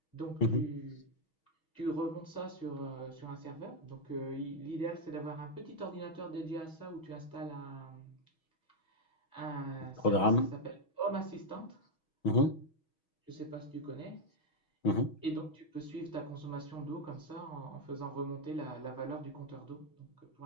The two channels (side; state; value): right; late; 6.3 ms